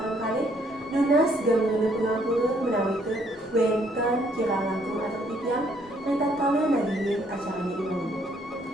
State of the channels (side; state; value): both; normal; correlation 0.67